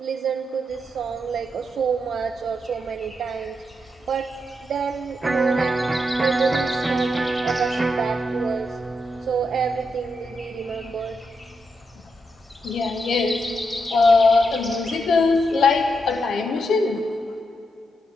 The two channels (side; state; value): both; normal; correlation 0.83